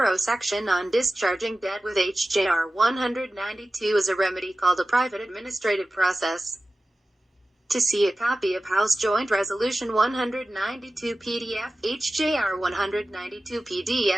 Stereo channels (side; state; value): both; normal; correlation 0.95